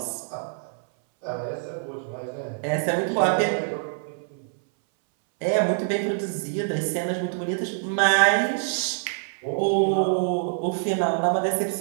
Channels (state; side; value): silent; left; 62 dB below the other